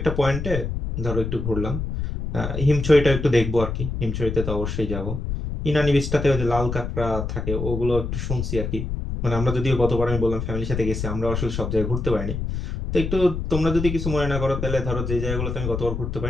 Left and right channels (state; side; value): noise; left; rumble, 4 dB below the sound